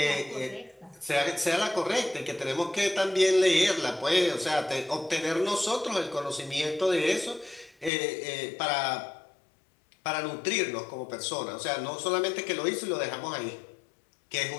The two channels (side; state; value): right; drops out; at 7.9 s